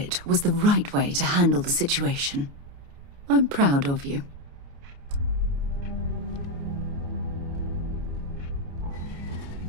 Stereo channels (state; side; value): late; left; 29 ms